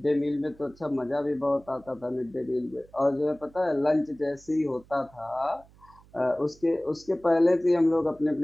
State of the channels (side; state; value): right; noise; hum, 26 dB below the sound